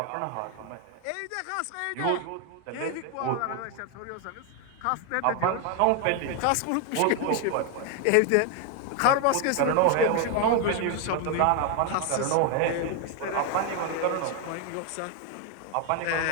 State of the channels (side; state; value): both; different; correlation 0.01